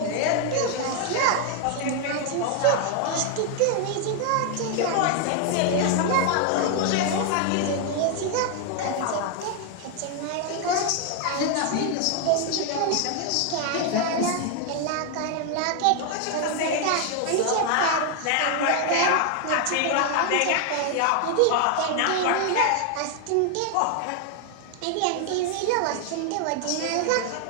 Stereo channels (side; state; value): both; different; correlation 0.00